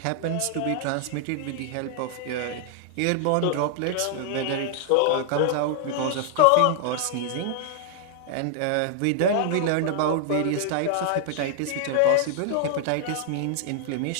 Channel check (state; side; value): different; both; correlation 0.00